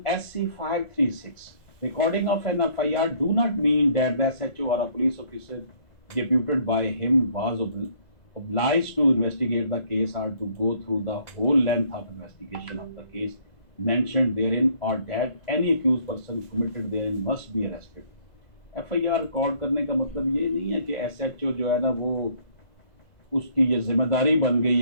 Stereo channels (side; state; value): right; late; 2.0 ms